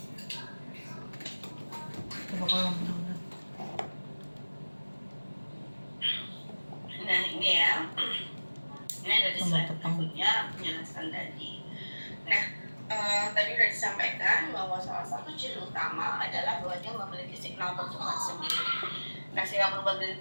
coba kalau benar. Nah, ini ya, ini ada di slide berikutnya penjelasan tadi. Nah, tadi sudah disampaikan bahwa salah satu ciri utama adalah bahwa dia memiliki signal pertumbuhan sendiri. Nah, signal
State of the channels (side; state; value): both; inverted; correlation -1.00